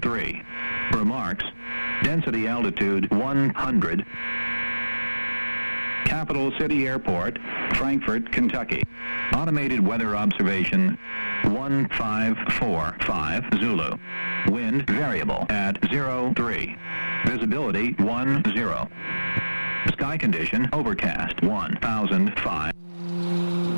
Remarks. Density altitude 100. Capital City Airport, Frankfort, Kentucky. Automated weather observation 1545 Zulu. Wind variable at 03. Visibility 10. Sky condition overcast 1005.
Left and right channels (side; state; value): both; inverted; correlation -1.00